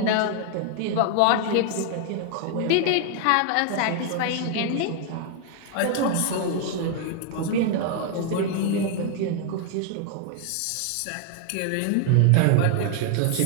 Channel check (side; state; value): both; different; correlation 0.00